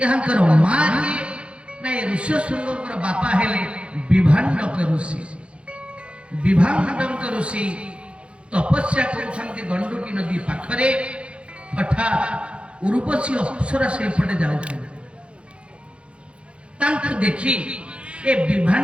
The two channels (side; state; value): left; late; 0.059 ms